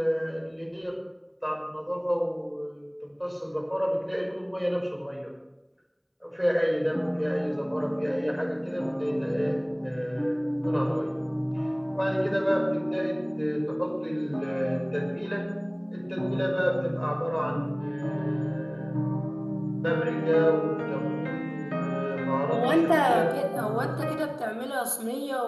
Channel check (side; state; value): both; identical; correlation 1.00